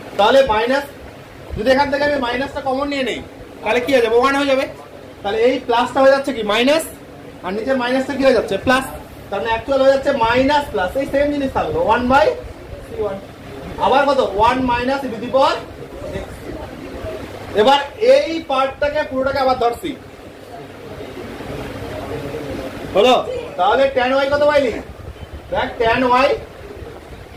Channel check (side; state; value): both; identical; correlation 1.00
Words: তাহলে মাইনাস যদি এখান থেকে আমি মাইনাসটা কমন নিয়ে নেই তাহলে কি হয়ে যাবে 1 হয়ে যাবে তাহলে এই প্লাসটা হয়ে যাচ্ছে কি মাইনাস আর নিচের মাইনাসটা কি হয়ে যাচ্ছে প্লাস তার মানে অ্যাকচুয়াল হয়ে যাচ্ছে মাইনাস প্লাস এই সেম জিনিস থাকলো 1 বাই c1 আবার কত 1 minus e to the power x এবার এই পার্টটাকে পুরোটাকে আবার ধরছি হলো তাহলে tan y কত পাইলি দেখ tan